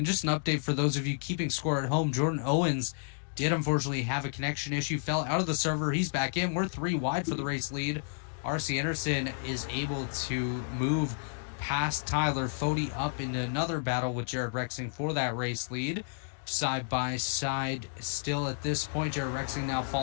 just an update for those of you keeping score at home, Jordan Owens did unfortunately have a connection issue, fell out of the server. He's back in. We're 3 wide for the race lead. RC Anderson is able to move past Tyler Fody up into another battle with Jared Rexing for that race lead. Side by side still at this point. Jared Rexing now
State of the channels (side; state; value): right; silent; digital silence